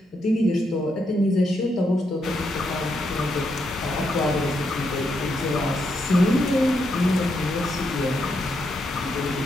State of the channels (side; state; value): both; normal; correlation 0.80